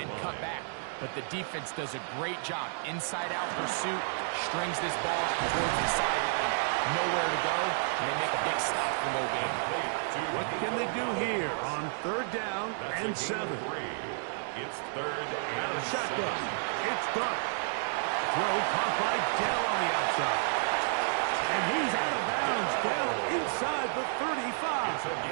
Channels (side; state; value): left; silent; digital silence